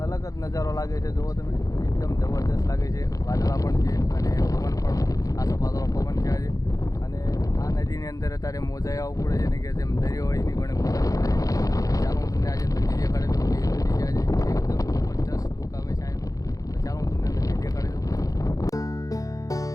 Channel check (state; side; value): late; right; 0.17 ms